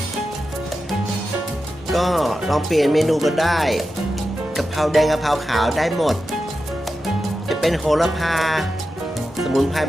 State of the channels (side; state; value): both; normal; correlation 0.91